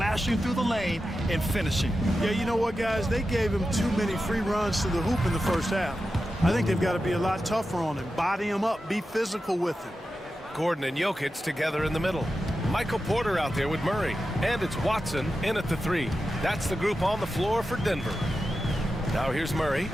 through the lane and finishing. Yeah, you know what, guys? They gave him too many free runs to the hoop in the first half. I think they've got to be a lot tougher on him. Body him up. Be physical with him. Gordon and Jokic together in the middle. Michael Porter out there with Murray. And it's Watson in at the 3. That's the group on the floor for Denver. Now here's Murray.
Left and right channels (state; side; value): normal; both; correlation 0.91